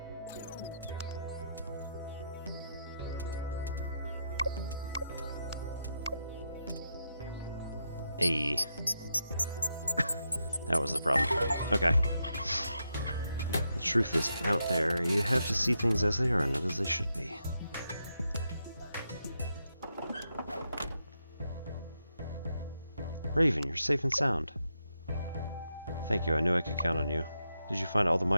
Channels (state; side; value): inverted; both; correlation -0.83